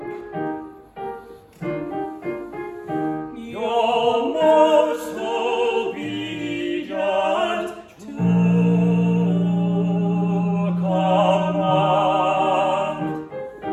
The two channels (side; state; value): both; identical; correlation 1.00